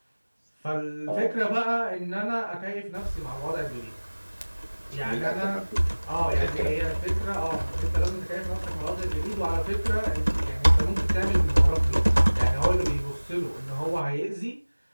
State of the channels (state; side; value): inverted; both; correlation -1.00